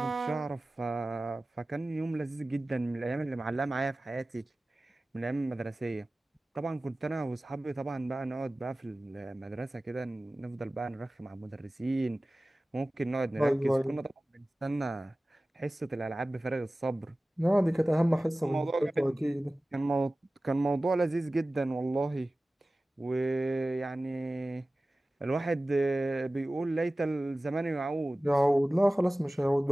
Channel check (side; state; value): both; normal; correlation 0.97